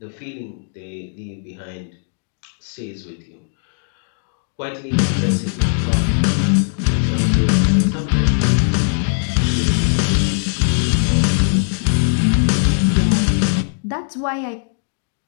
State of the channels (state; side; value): silent; right; digital silence